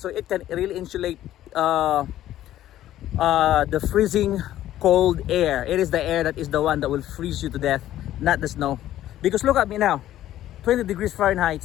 it can really insulate the freezing cold air. It is the air that is the one that will freeze you to death, not the snow. Because look at me now, 20 degrees Fahrenheit.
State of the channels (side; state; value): right; quieter; 13.1 dB